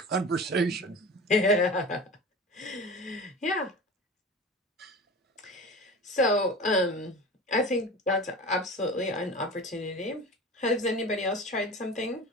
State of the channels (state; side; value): normal; both; correlation 0.34